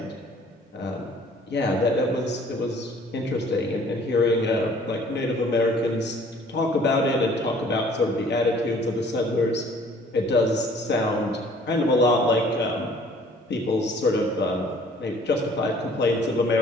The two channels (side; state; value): both; normal; correlation 0.55